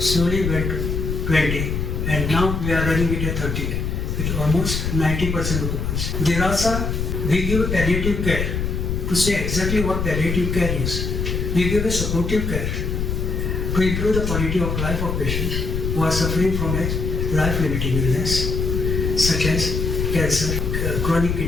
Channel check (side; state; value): left; noise; rumble, 1 dB below the sound